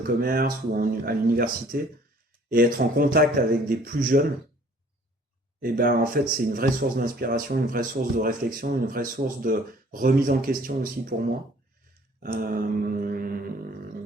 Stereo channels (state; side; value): normal; both; correlation 0.55